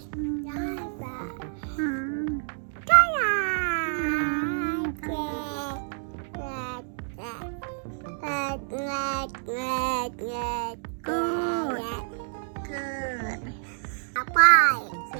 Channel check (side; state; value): left; silent; digital silence